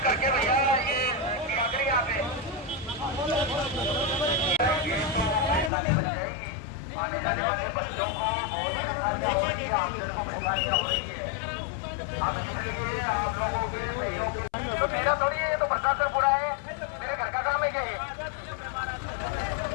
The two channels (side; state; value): right; drops out; at 5.7 s